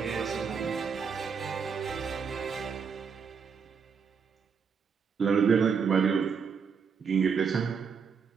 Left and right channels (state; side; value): quieter; left; 6.1 dB